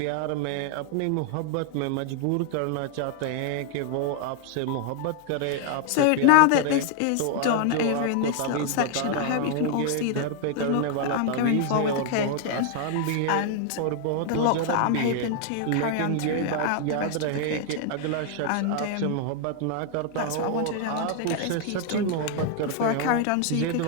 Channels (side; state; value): both; different; correlation 0.00